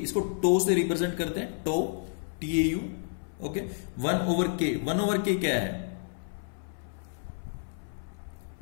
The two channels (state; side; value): silent; right; 58 dB below the other